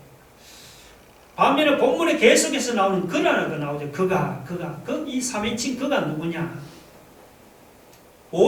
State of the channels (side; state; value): both; identical; correlation 1.00